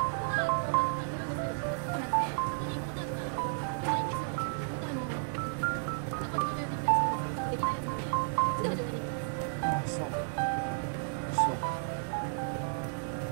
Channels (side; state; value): left; silent; digital silence